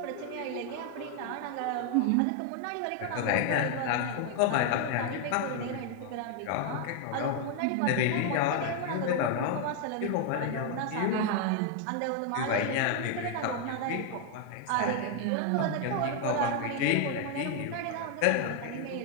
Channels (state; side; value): different; both; correlation 0.00